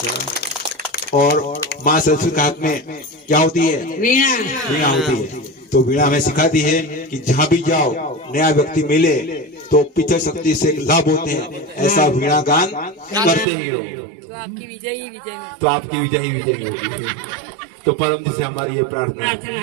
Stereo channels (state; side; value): drops out; left; at 13.5 s